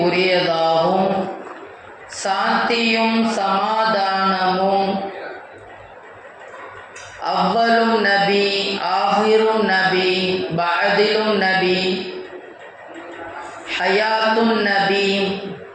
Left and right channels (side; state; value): both; identical; correlation 1.00